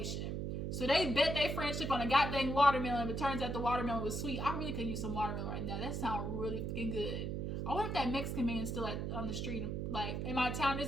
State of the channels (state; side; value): noise; right; hum, 2 dB below the sound